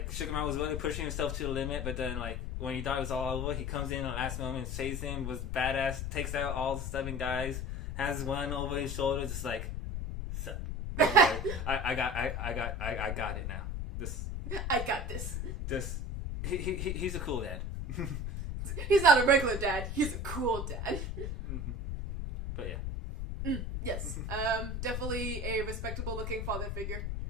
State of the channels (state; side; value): noise; left; rumble, 3 dB below the sound